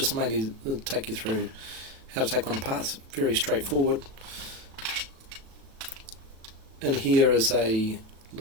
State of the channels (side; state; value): left; late; 36 ms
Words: mainly to take you through how to take one apart. It's very straightforward. And here is a